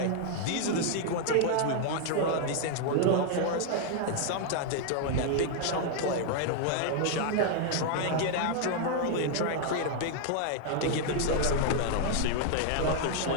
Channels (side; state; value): both; different; correlation 0.00